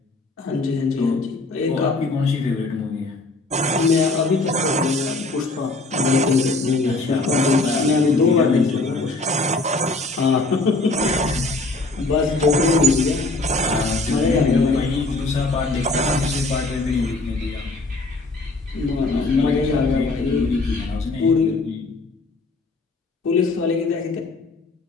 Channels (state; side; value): quieter; right; 3.2 dB